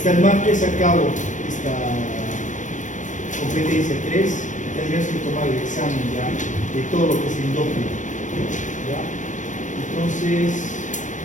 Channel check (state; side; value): late; right; 0.37 ms